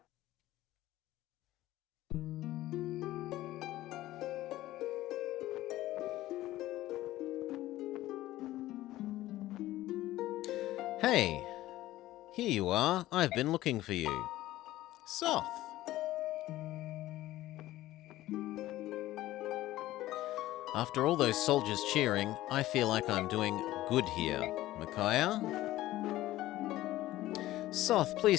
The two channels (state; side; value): quieter; right; 15.8 dB